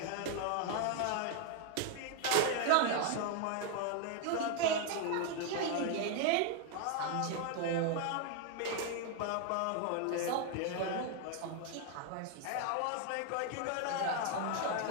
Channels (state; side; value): different; both; correlation 0.00